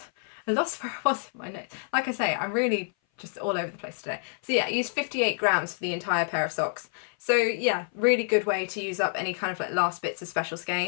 I lost where I was in my notes. Like I say, I'm really just all over the place today. So yeah, I used 58 grams for the entire pair of socks. So yeah, really good way to use up any kind of like last bits of special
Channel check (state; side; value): silent; right; 57 dB below the other